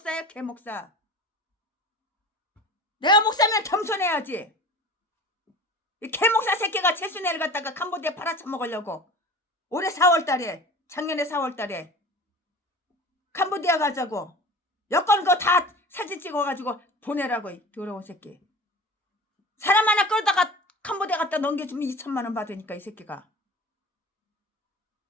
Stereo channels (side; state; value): both; normal; correlation 0.38